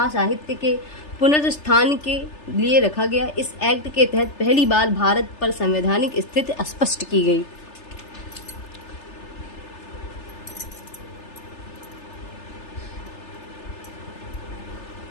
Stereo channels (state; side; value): late; right; 3.3 ms